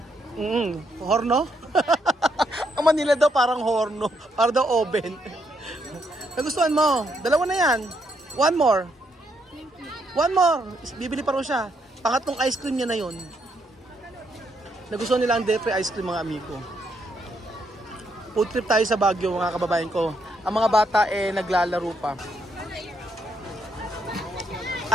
horno? Ang Manila daw parang horno, parang daw oven. Nagustuhan mo? Dalawa na yan. One more. Bibili pa rin siya. Pangatlong ice cream niya na yun. Nagustuhan nila ang Depre ice cream mga amigo. Food trip tayo sa Baguio mga kababayan ko. Ang mga bata naglalaro pa.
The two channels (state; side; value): normal; both; correlation 0.76